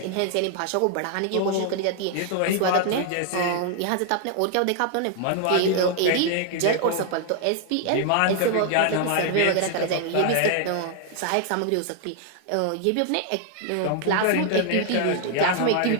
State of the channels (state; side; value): different; both; correlation 0.00